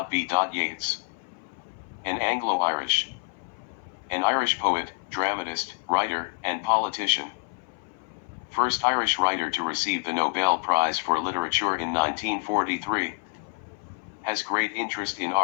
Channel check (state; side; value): silent; right; 57 dB below the other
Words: Yeats. An Anglo-Irish. An Irish poet, dramatist, writer, and politician. First Irish writer to receive the Nobel Prize for Literature in 1943. Has great interest in